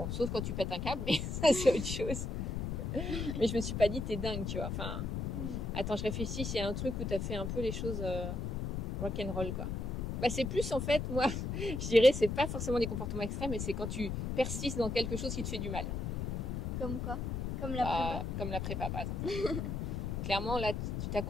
sauf quand tu pètes un câble, mais ça c'est autre chose. Mais je me suis pas dit t'es dingue, tu vois. Enfin, attends, je réfléchis s'il y a un truc où t'as fait un peu les choses rock'n'roll, quoi. Bah c'est plus en fait, moi, je dirais, c'est pas forcément des comportements extrêmes, mais c'est quand tu persistes dans quelque chose qui te fait du mal. Comme quoi? Comme la prépa? Comme la prépa, par exemple. Clairement, là, tu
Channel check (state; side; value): noise; left; rumble, 2 dB below the sound